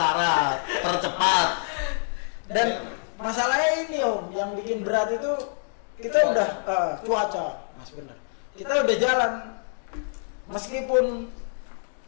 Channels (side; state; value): right; silent; digital silence